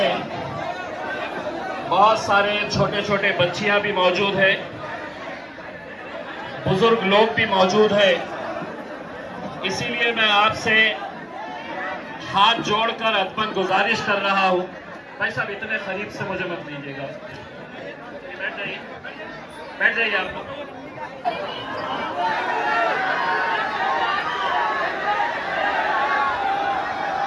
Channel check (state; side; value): identical; both; correlation 1.00